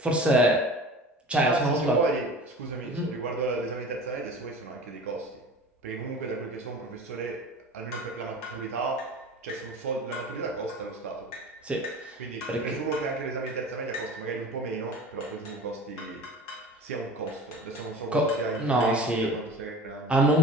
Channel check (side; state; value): both; normal; correlation 0.39